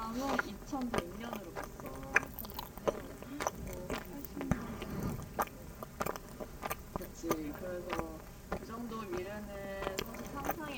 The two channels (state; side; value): identical; both; correlation 1.00